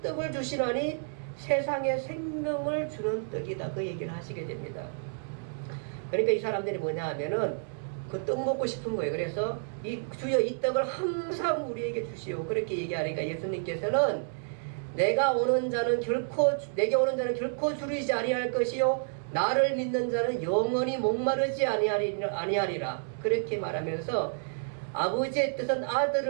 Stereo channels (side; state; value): left; silent; digital silence